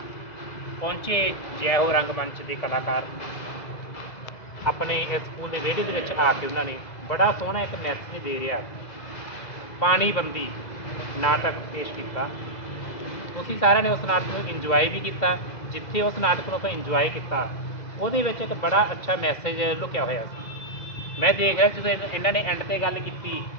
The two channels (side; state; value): right; late; 2.0 ms